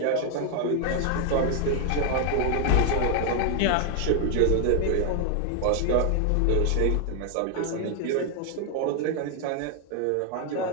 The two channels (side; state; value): both; different; correlation 0.01